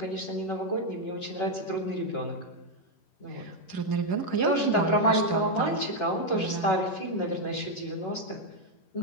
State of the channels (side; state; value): right; late; 11 ms